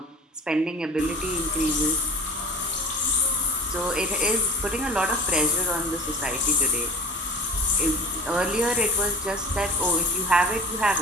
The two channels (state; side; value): normal; both; correlation 0.35